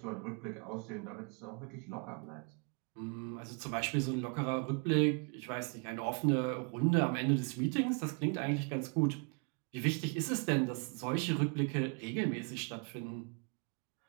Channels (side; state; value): left; quieter; 35.9 dB